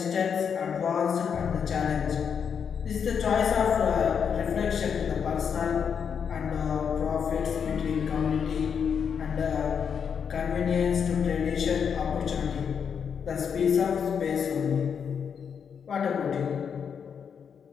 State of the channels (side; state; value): right; quieter; 7.0 dB